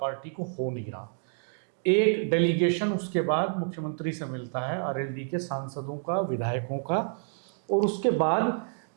को हो नहीं रहा। एक डेलीगेशन उसके बाद मुख्यमंत्री से मिलता है, आरएलडी के सांसदों का, विधायकों का, और उसके बाद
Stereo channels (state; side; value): silent; left; digital silence